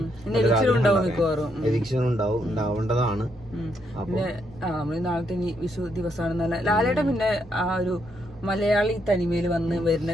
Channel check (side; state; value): both; normal; correlation 0.76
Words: എവിക്ഷൻ ഉണ്ടാവേണ്ടതാണ്. പിന്നെ നമ്മള് നാളത്തെ ഇനി വിഷു ദിവസമാണ്. ലാലേട്ടൻ പിന്നെ ആ ഒരു മലയാളി തനിമയിൽ വന്ന് വരുന്ന